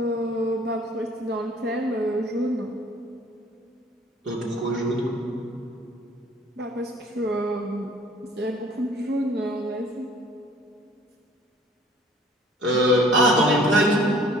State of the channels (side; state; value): both; normal; correlation 0.53